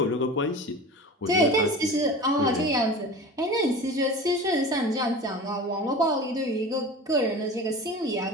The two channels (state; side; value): normal; both; correlation 0.35